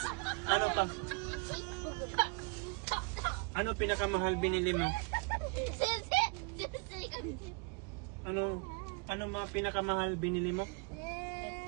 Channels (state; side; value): quieter; left; 32.9 dB